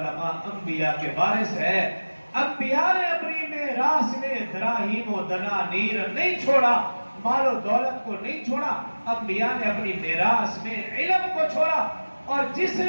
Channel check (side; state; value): both; inverted; correlation -1.00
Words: انبیاء کے وارث ہے، انبیاء نے اپنی میراث میں دراہیم و دنانیر نہیں چھوڑا، مال و دولت کو نہیں چھوڑا، انبیاء نے اپنی میراث میں علم کو چھوڑا، اور جس